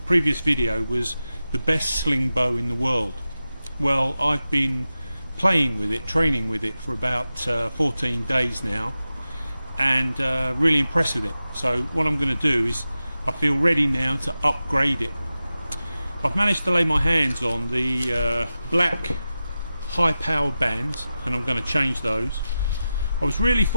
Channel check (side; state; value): both; inverted; correlation -0.93